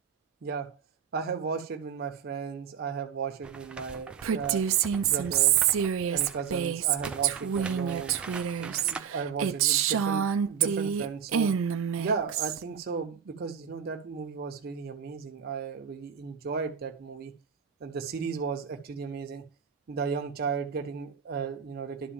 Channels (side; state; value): left; quieter; 7.8 dB